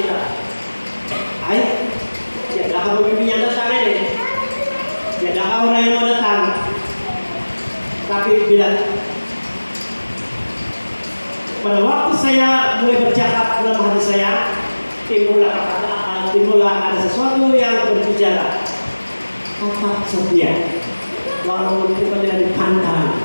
sudah. Ayo, ya dah pemimpin yang datang ini, ya dah orang yang mau datang. Tapi bila pada waktu saya mulai bercakap dalam hati saya, timbullah ada sesuatu yang berbicara. Tetap setia, walaupun kita tidak dipandang,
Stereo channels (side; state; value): both; inverted; correlation -1.00